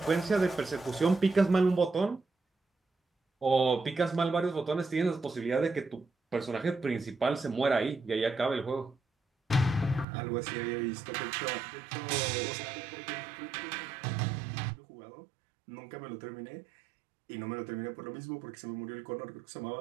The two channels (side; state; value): left; drops out; at 10.1 s